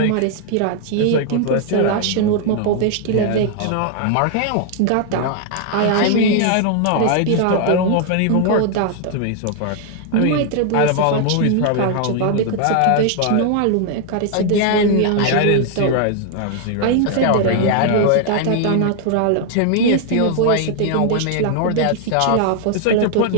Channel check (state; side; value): different; both; correlation 0.00